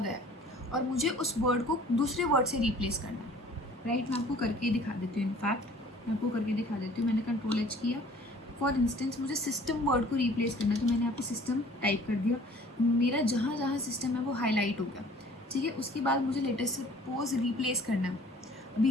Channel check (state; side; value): normal; both; correlation 0.51